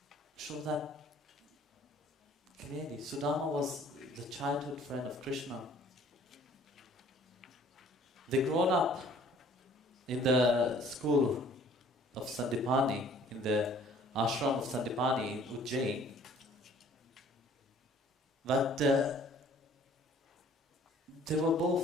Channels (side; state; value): both; normal; correlation 0.54